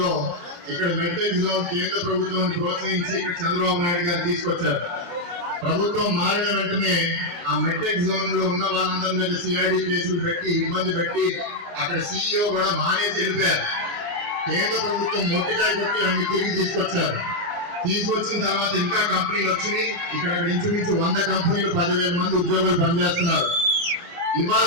ఇక్కడ మెట్రిక్ జోన్ కేంద్ర ప్రభుత్వాన్ని ప్రోత్సహించి ఇక్కడ చంద్రబాబు నాయుడు గారు తీసుకొచ్చారు. ప్రభుత్వం మారిన వెంటనే ఆ మెట్రిక్ జోన్ లో ఉన్న వాళ్ళందరి మీద సిఐడి కేసులు పెట్టి ఇబ్బంది పెట్టి అక్కడ CEO కూడా మానేసి వెళ్ళిపోయారు. కేంద్ర ప్రభుత్వం మొట్టికాయ కొట్టి అన్ని తిరిగి తీసుకొచ్చారు. తీసుకొచ్చిన తర్వాత ఇంకా కంపెనీలు వచ్చినాయి. ఇక్కడ ఇంచుమించు 100 కంపెనీలు 10,000 మంది ఉద్యోగులు పనిచేస్తున్నారు. ఇవాళ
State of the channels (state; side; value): late; left; 28 ms